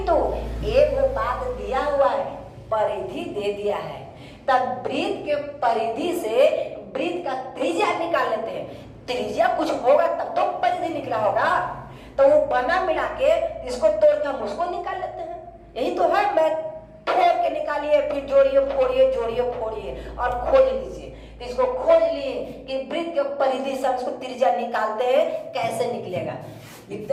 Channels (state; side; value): identical; both; correlation 1.00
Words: एक बात दिया हुआ है, परिधि दे दिया है, तब वृत्त के परिधि से वृत्त का त्रिज्या निकाल लेते हैं। त्रिज्या कुछ होगा तब तो परिधि निकला होगा, तो वो बना मिला के इसको तोड़ के हम उसको निकाल लेते हैं। यही तो है मैथ, तोड़ के निकालिए, फिर जोड़िए फोड़िए, जोड़िए फोड़िए और खोज लीजिए। तो इसको खोज लिए कि वृत्त के परिधि से इसको त्रिज्या निकालते हैं, कैसे निकलेगा।